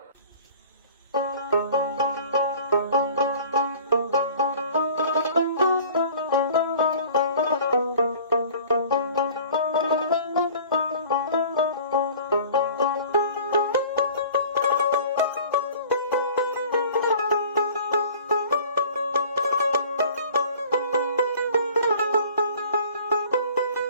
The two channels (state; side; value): inverted; both; correlation -0.47